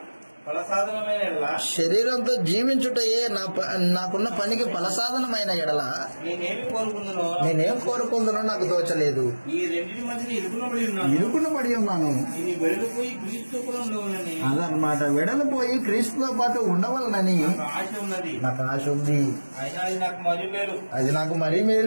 శరీరంతో జీవించుటయే నాకున్న పనికి ఫలసాధనమైన ఎడల నేనేం కోరుకుందునో నాకు తోచలేదు. ఇరుకున పడి ఉన్నాను. అదనమాట, వెడలిపోయి క్రీస్తుతో పాటు ఉండవలనని నాకు ఆశ ఉంది. అది నాకు మరీ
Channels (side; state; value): both; inverted; correlation -1.00